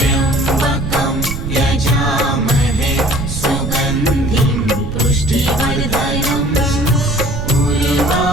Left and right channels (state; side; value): noise; right; rumble, 5 dB below the sound